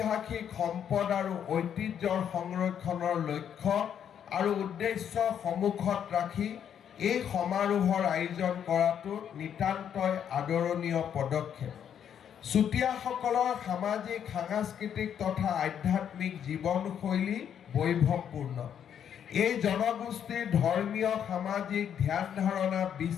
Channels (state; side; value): quieter; right; 8.8 dB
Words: সম্পদ আৰু ঐতিহ্যৰ সংৰক্ষণৰ লক্ষ্য আৰু উদ্দেশ্য সন্মুখত ৰাখি এই সমাৰোহৰ আয়োজন কৰাটো নিতান্তই আদৰণীয় পদক্ষেপ। চুতীয়াসকলৰ সামাজিক, সাংস্কৃতিক তথা আধ্যাত্মিক জীৱনশৈলী বৈভৱপূৰ্ণ। এই জনগোষ্ঠীৰ ধৰ্মীয়, সামাজিক ধ্যান ধাৰণা,